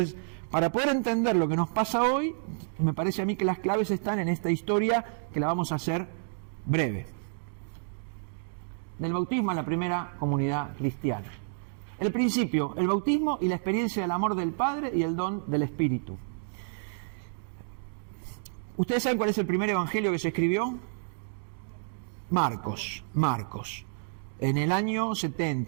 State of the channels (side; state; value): left; silent; digital silence